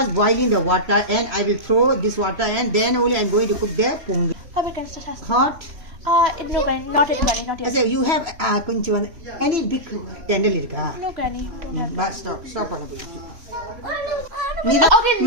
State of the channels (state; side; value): late; left; 3.0 ms